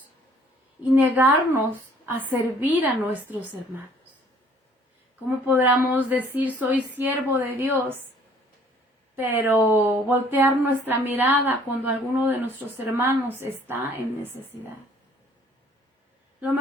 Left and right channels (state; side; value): normal; both; correlation 0.58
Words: y negarnos a servir a nuestros hermanos? ¿Cómo podríamos decir, soy siervo de Dios, pero voltear nuestra mirada cuando alguno de nuestros hermanos está en necesidad? Lo